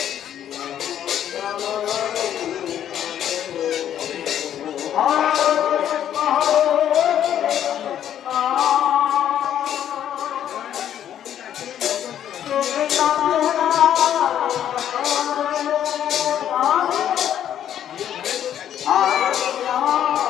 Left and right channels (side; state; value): right; quieter; 10.4 dB